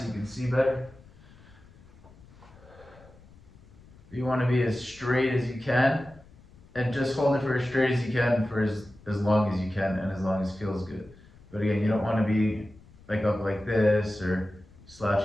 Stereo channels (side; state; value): left; noise; rumble, 24 dB below the sound